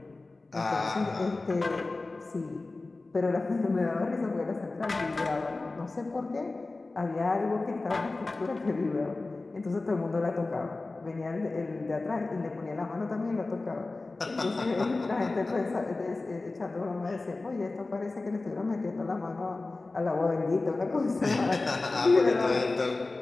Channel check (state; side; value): quieter; right; 3.3 dB